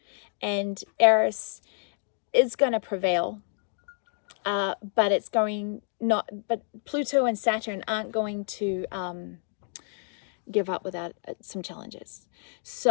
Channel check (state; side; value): silent; right; digital silence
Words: and Eris is going to prevail. But it's going not. But Pluto and Saturn aren't going to give up without some challenges.